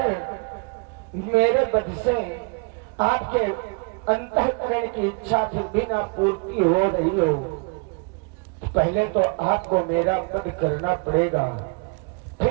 मेरे वध से आपके अंतःकरण की इच्छा फिर भी ना पूर्ति हो रही हो तो पहले तो आपको मेरा वध करना पड़ेगा।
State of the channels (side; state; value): left; quieter; 34.3 dB